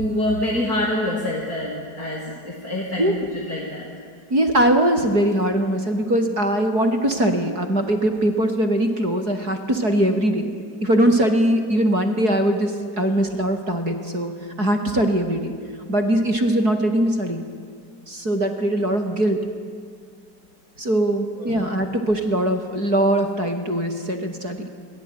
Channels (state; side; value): late; left; 4.7 ms